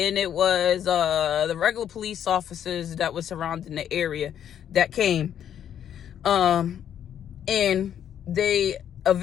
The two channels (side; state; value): right; quieter; 9.6 dB